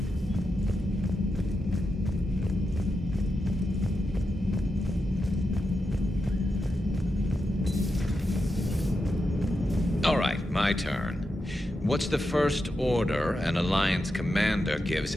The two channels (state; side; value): normal; both; correlation 0.87